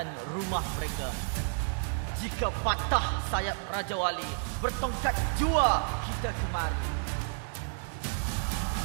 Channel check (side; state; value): left; silent; digital silence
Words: rumah mereka. Jika patah sayap Raja Wali, bertongkat jua kita kemari.